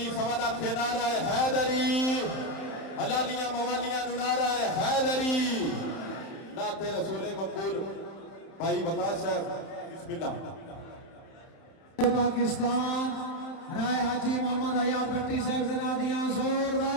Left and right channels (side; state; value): right; late; 31 ms